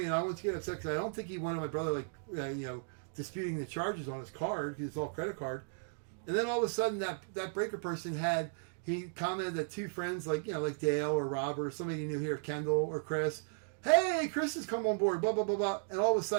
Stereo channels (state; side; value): silent; left; digital silence